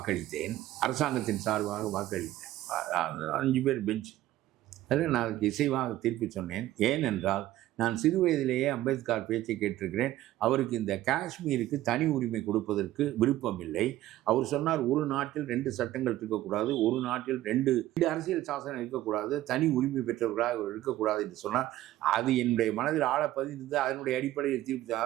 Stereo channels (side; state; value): left; quieter; 14.7 dB